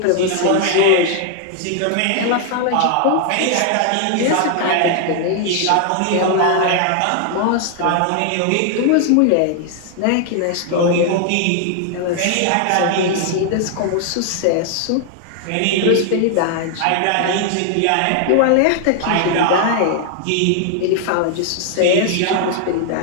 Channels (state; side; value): different; both; correlation 0.00